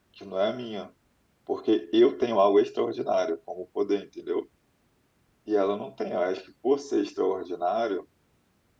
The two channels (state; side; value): identical; both; correlation 1.00